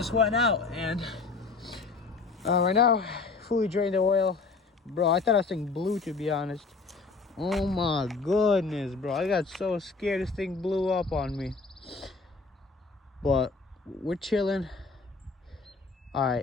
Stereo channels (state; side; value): quieter; right; 4.2 dB